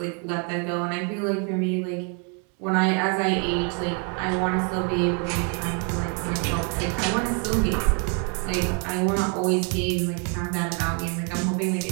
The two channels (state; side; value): quieter; left; 37.6 dB